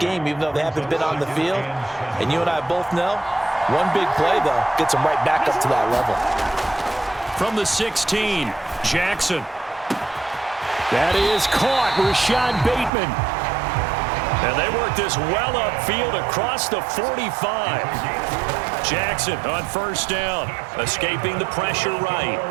even though they haven't been on the field? And you and I both know, one big play, though, gets them right back up to that level. From the 16, Jackson. That is caught. Rashad Bateman. And they work this well upfield across the 45. Jackson on 1st down, escaping the pressure right.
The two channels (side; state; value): left; drops out; at 12.9 s